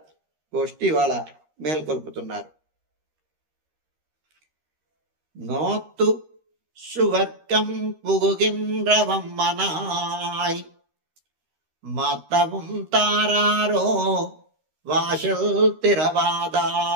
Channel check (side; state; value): left; late; 13 ms